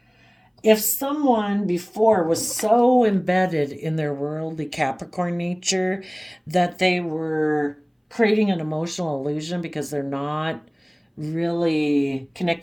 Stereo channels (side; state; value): both; identical; correlation 1.00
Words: If someone before was so embedded in their worldly Capricorn nature that they were creating an emotional illusion because they're not really